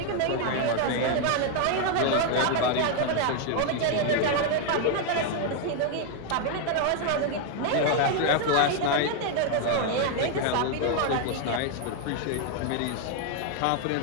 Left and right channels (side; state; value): both; different; correlation 0.00